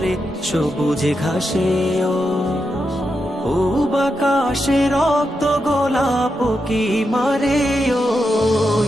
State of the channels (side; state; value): both; normal; correlation 0.86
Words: সবুজ ঘাসে ও বাকাশে রক্ত গোলাপ কি মারে ও